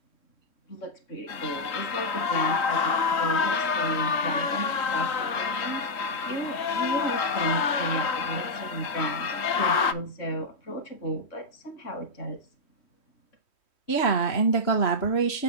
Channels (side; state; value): right; late; 3.1 ms